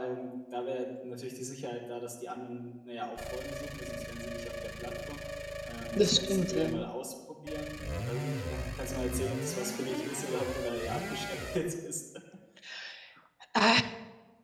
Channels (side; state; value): both; identical; correlation 1.00